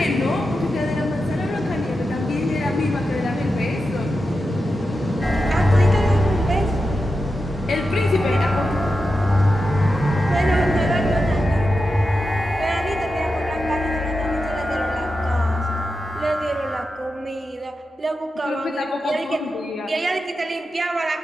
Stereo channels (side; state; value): both; normal; correlation 0.89